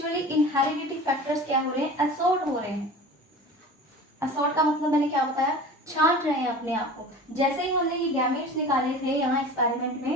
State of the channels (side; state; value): both; normal; correlation 0.37